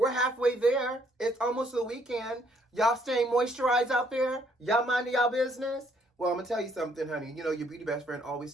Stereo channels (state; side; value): normal; both; correlation 0.67